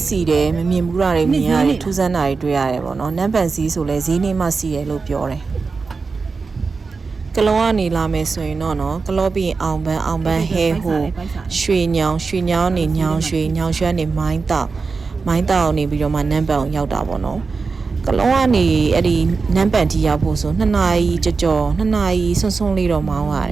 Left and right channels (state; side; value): quieter; left; 4.5 dB